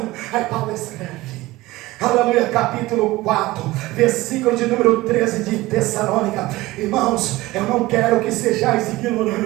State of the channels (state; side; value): quieter; left; 18.9 dB